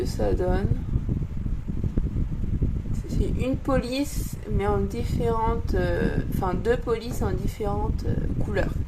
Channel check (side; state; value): both; identical; correlation 1.00